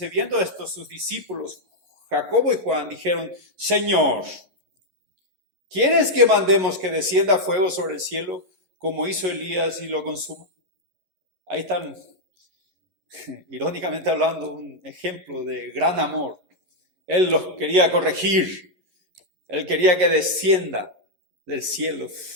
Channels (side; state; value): left; late; 11 ms